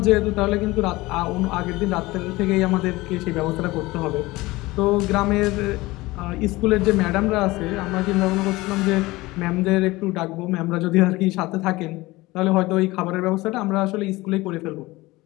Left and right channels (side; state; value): right; quieter; 20.4 dB